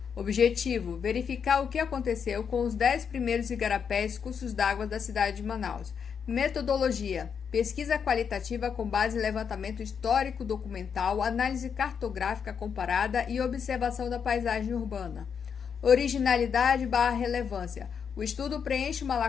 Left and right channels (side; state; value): right; quieter; 6.9 dB